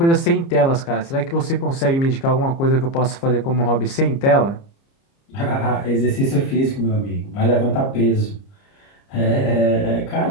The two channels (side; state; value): right; late; 30 ms